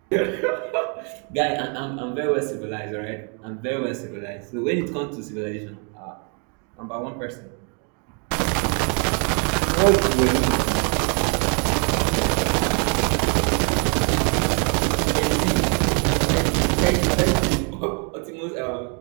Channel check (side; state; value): left; quieter; 38.3 dB